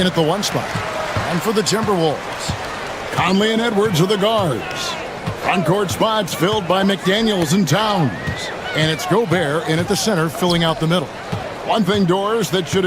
at the 1 spot. And for the Timberwolves, Conley and Edwards are the guards. Front court spots filled by McDaniels and Towns. And it's Gobert in at the center, filling out the middle. One thing, Doris, that should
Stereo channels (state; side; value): identical; both; correlation 1.00